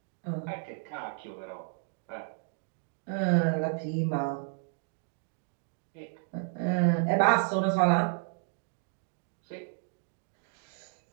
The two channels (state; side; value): silent; left; 56 dB below the other